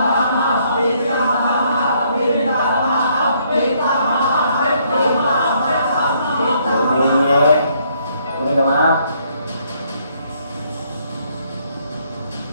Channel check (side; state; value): both; inverted; correlation -0.69